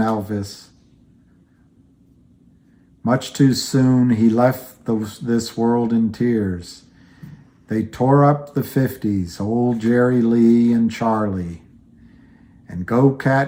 Much too soon he left this world in tears. They tore up the 50s, old Jerry Lee and Charlie. And Go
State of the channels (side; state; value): both; identical; correlation 1.00